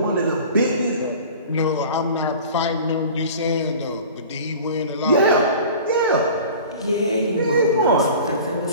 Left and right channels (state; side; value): inverted; both; correlation -0.41